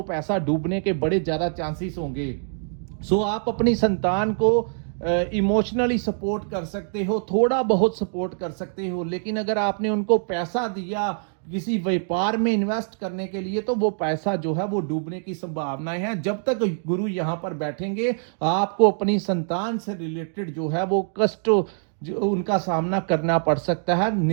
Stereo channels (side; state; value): left; silent; digital silence